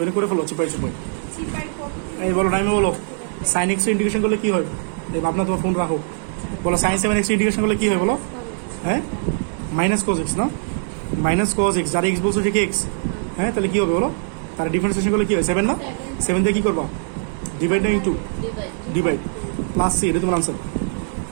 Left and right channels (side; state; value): left; silent; digital silence